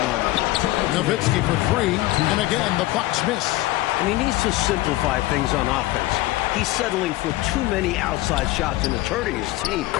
them. Nowitzki for 3, and again, the Bucks miss. And he needs to simplify things on offense. He's settling for too many outside shots and it's hurting his team.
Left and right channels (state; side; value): quieter; right; 17.8 dB